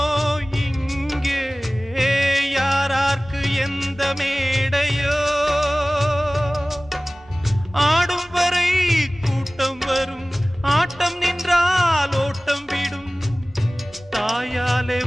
இங்கே, யாரார்க்கு எந்த மேடையோ, ஆடும் வரை கூட்டம் வரும், ஆட்டம் நின்றால் ஓட்டம் விடும். தாயாலே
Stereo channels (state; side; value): normal; both; correlation 0.98